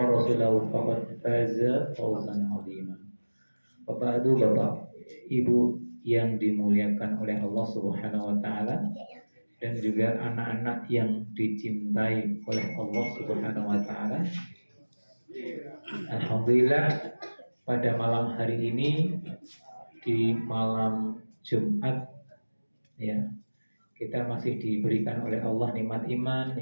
rasulahu faqad faza fawzan 'azima. Bapak Ibu yang dimuliakan oleh Allah Subhanahu wa taala dan juga anak-anak yang dicintai oleh Allah Subhanahu wa taala. Alhamdulillah pada malam hari ini di malam Jumat ya, kita masih diberikan oleh Allah nikmat iman,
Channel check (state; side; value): inverted; both; correlation -1.00